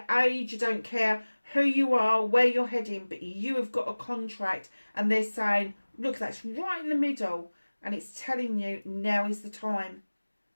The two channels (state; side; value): inverted; both; correlation -1.00